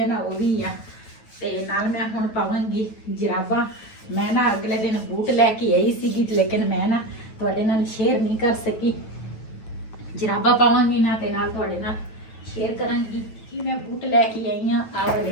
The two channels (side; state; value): right; late; 9.2 ms